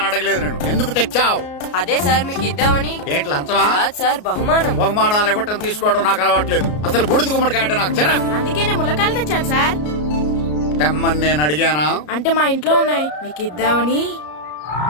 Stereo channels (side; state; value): right; late; 33 ms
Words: అడగలేదు నేను. ఎందుకు తెచ్చావు? అదే సార్ మీకు ఇద్దామని. ఏంటి లంచమా? సార్, బహుమానం. బహుమానాలు ఇవ్వటం తీసుకోవడం నాకు అలవాట్లేదు. అసలు బూడిద గుమ్మడికాయ అంటే నాకు చిరా. అందుకే నేను ములకాయలు తెచ్చాను సార్. తెమ్మని నేను అడిగానా? అంటే మా ఇంట్లో ఉన్నాయి, మీకు ఇద్దామని.